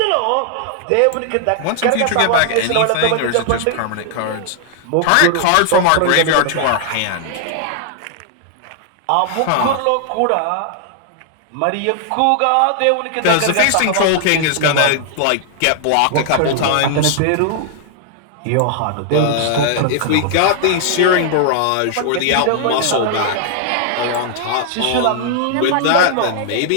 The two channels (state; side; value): different; both; correlation 0.00